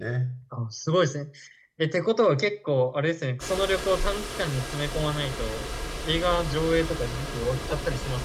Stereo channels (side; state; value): both; identical; correlation 1.00